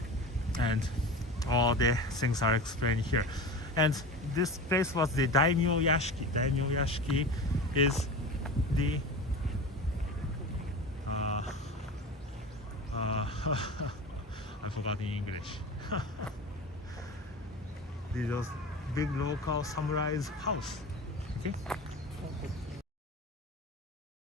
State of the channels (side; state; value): both; normal; correlation 0.31